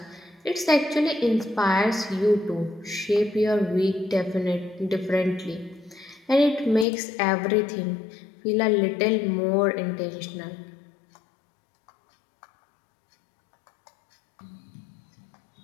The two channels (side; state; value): right; drops out; at 6.9 s